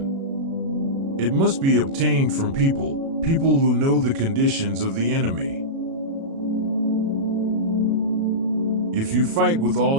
It must be obtained from people who know the conditions of the enemy. If you fight with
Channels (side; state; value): left; late; 36 ms